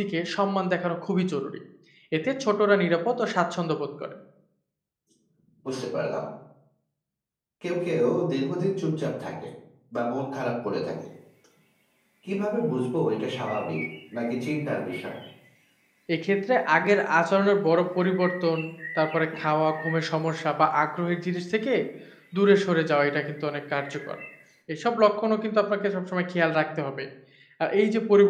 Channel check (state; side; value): identical; both; correlation 1.00